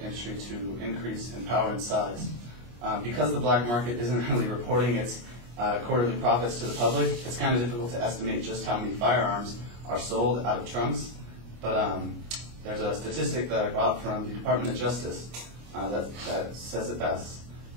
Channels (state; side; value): late; left; 25 ms